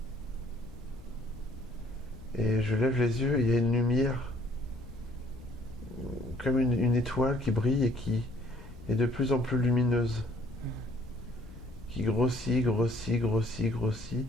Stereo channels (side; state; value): left; noise; rumble, 16 dB below the sound